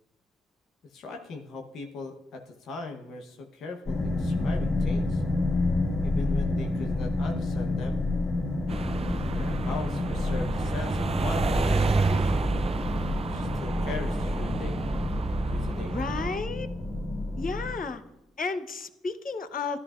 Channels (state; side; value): normal; both; correlation 0.84